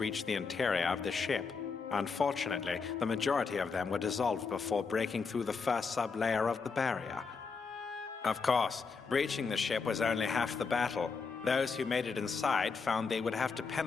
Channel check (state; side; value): quieter; right; 5.0 dB